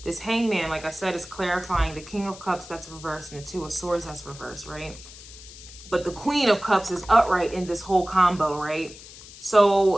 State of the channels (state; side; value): noise; left; hiss, 17 dB below the sound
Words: this hangman, like I said, is clarifying the King of Cups that's reversed and the Two of Swords that's reversed, right? But the Queen of Cups is upright in this whole combo, right? So